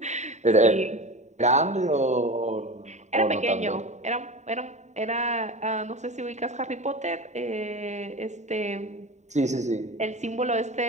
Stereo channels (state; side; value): late; left; 0.34 ms